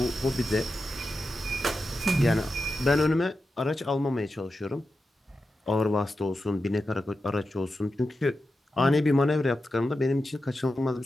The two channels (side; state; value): both; normal; correlation 0.90